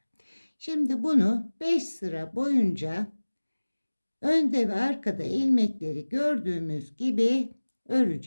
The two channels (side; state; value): both; inverted; correlation -1.00